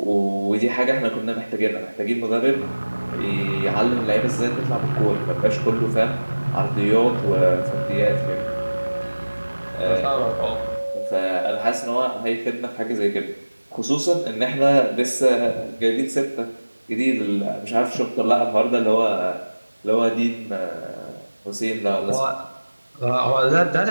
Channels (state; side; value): inverted; both; correlation -1.00